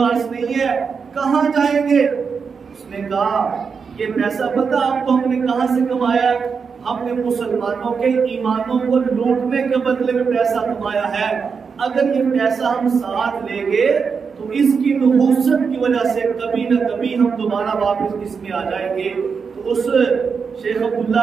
نہیں ہے، کہاں جائیں گے؟ اس نے کہا یہ پیسہ پتہ آپ کو ہم نے کہاں سے کمایا؟ ہم نے مسلمانوں کے ایمانوں کو لوٹنے کے بدلے میں پیسہ کمایا ہے. اگر یہ پیسہ ہم ساتھ لیں گے تو اس کی نحوست کی وجہ سے کبھی نہ کبھی ہم دوبارہ واپس اس میں آ جائیں گے. تو اس شیخ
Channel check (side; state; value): left; quieter; 5.7 dB